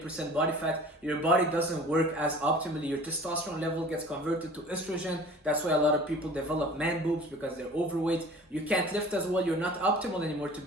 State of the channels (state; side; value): normal; both; correlation 0.45